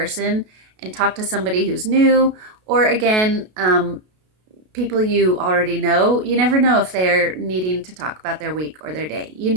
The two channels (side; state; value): left; late; 33 ms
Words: and talk to somebody who's new, or again, people you already know. You never know if they're needing to talk about their week or their day. You